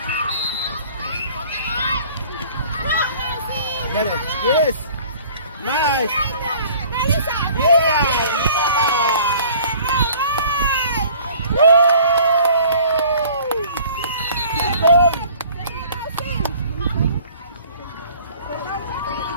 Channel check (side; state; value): both; inverted; correlation -0.51